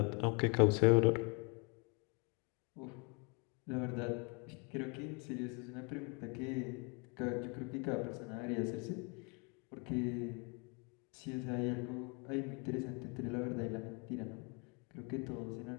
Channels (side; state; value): right; quieter; 32.9 dB